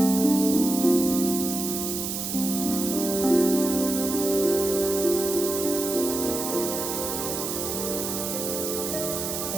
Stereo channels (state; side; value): noise; right; hiss, 4 dB below the sound